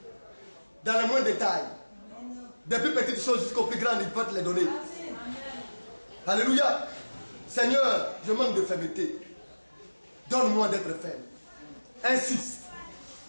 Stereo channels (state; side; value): inverted; both; correlation -1.00